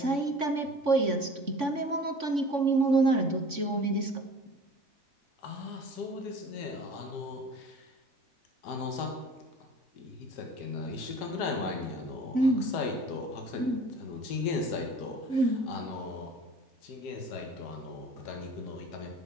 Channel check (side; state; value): left; late; 3.5 ms